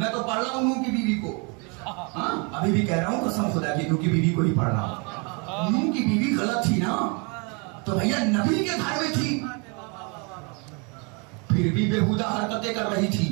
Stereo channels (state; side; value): quieter; left; 32.7 dB